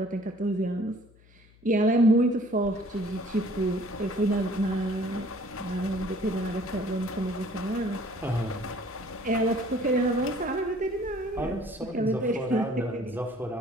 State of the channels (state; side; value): noise; left; hum, 27 dB below the sound